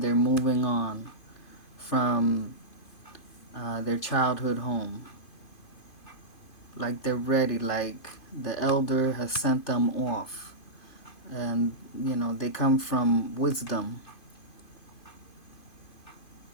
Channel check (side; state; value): right; late; 2.5 ms